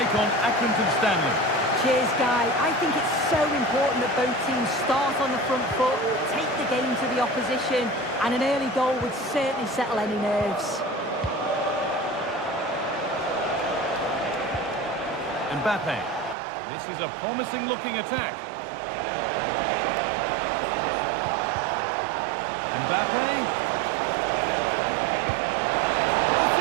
on Accrington Stanley. Cheers, Guy. I think it's so important that both teams start on the front foot, take the game to the opposition, and an early goal would certainly settle any nerves. Mbappe. This is a promising-looking attack. Mbappe.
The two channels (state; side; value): drops out; left; at 16.4 s